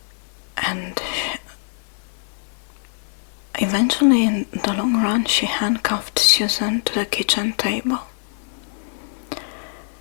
And eventually, in the long run, she handcuffed Susan to the kitchen table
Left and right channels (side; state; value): right; silent; digital silence